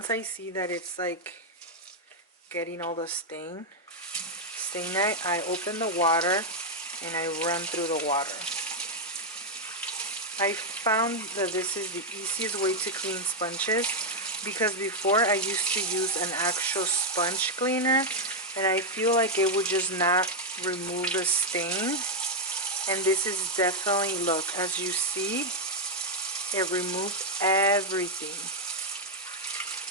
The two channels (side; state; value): both; normal; correlation 0.00